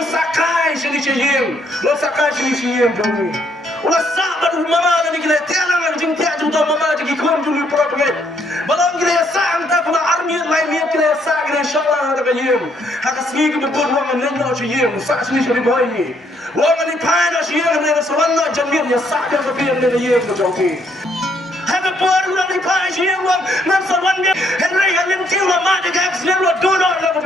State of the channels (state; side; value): normal; both; correlation 0.70